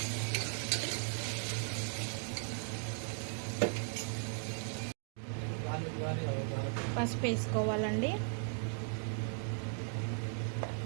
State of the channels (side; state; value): left; silent; 53 dB below the other